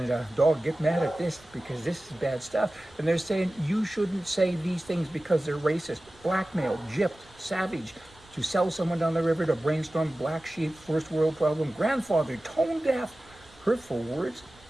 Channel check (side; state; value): right; noise; rumble, 27 dB below the sound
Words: dog, get mad at this because this is bad stuff. And they're saying you shouldn't say these things because they're racist, blackmail, gypped, savage, to sell someone down the river, to brainstorm, black sheep, first world problem, grandfather, tone deaf, hurtful words.